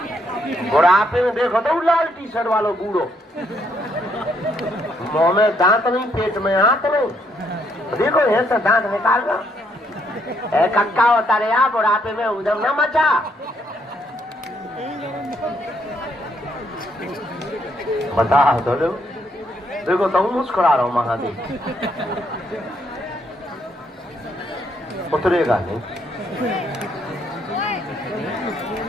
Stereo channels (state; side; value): normal; both; correlation 0.72